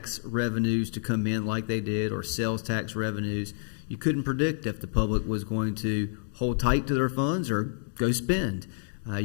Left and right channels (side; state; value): right; silent; digital silence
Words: revenues to come in like they did, or sales tax revenues. You couldn't predict if the public was going to hold tight to their funds or go spend.